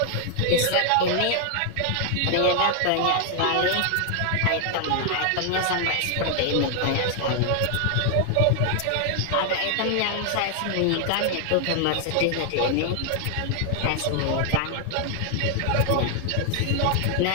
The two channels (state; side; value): different; both; correlation 0.00